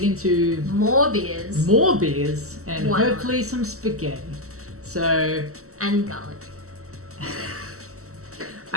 into More beers. more beers and Why not? hopefully some spaghetti. So And garlic.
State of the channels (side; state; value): left; late; 0.64 ms